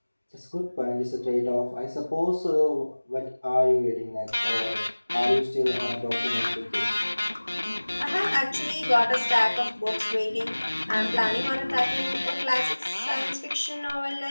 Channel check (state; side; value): inverted; both; correlation -1.00